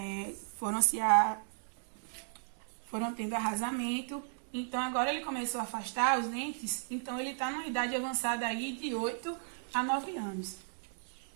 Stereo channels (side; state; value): left; silent; digital silence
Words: tendo arrasamento. Então, agora ele começou a afastar os dentes, então ele está numa idade avançada aí de 8 a 9 anos.